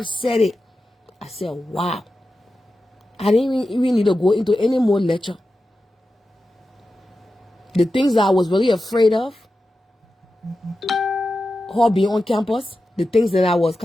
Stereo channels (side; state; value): both; normal; correlation 0.92